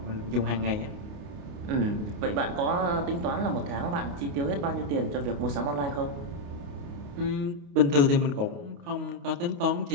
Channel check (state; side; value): late; left; 29 ms